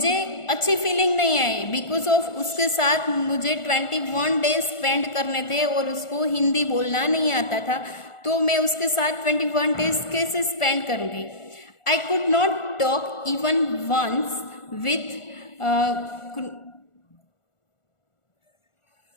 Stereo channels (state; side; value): late; right; 1.4 ms